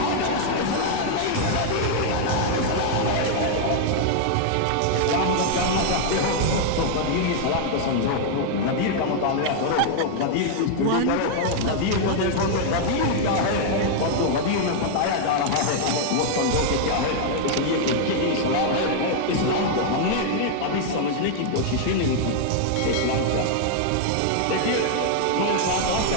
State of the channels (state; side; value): different; both; correlation 0.00